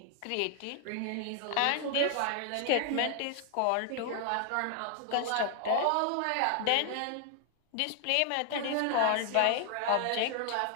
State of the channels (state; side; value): different; both; correlation 0.00